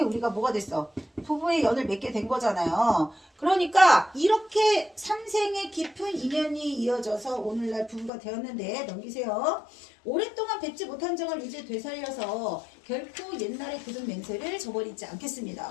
우리가 뭐가 됐어? 부부의 연을 맺게 된 거잖아요. 그러니까 이렇게 3생의 깊은 인연이 이어져서 오늘날 부부가 되었는데, 넘기세요. 오랫동안 뵙지 못한 정을 이제 되살려서 결코 옛날의 굳은 맹세를 저버리지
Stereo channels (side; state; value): right; drops out; at 8.1 s